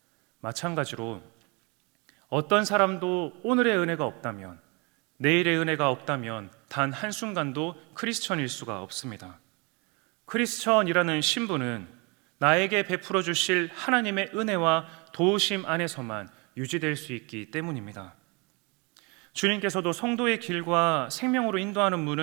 마찬가지로 어떤 사람도 오늘의 은혜가 없다면, 내일의 은혜가 없다면 단 한순간도 크리스천일 수가 없습니다. 크리스천이라는 신분은 나에게 베풀어 주실 하나님의 은혜와 도우심 안에서만 유지될 수 있기 때문입니다. 주님께서도 성도의 길과 생명으로 인도하는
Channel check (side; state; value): left; quieter; 29.5 dB